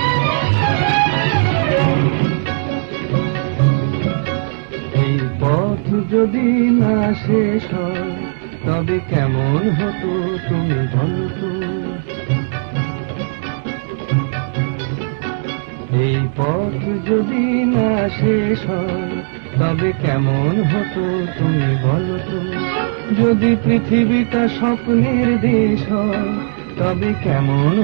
এই পথ যদি না শেষ হয় তবে কেমন হতো তুমি বলো তো এই পথ যদি না শেষ হয় তবে কেমন হতো তুমি বলো তো যদি পৃথিবীটা স্বপ্নের দেশ হয় তবে কেমন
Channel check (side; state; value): left; silent; digital silence